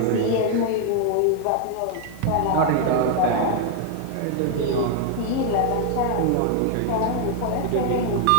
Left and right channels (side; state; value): both; different; correlation 0.00